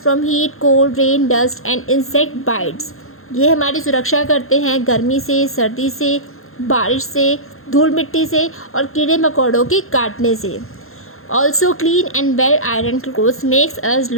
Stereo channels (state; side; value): late; right; 0.61 ms